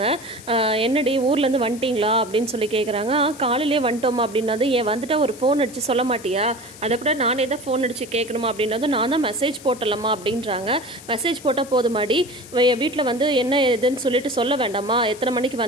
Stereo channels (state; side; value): noise; left; hiss, 18 dB below the sound